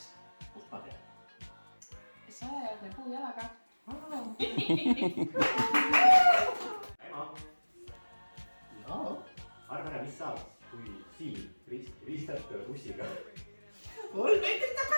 Kust ma tean? Sajajalgne puujalaga. Ema. Jaa. Arva ära, mis saab, kui siin ristad bussiga. 3 meetrit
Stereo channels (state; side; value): inverted; both; correlation -1.00